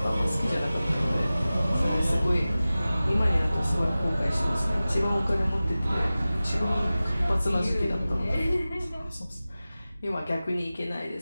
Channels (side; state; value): both; inverted; correlation -0.96